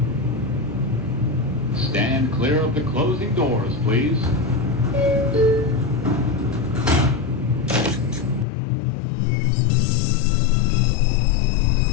Stand clear of the closing doors, please.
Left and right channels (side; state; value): right; drops out; at 8.5 s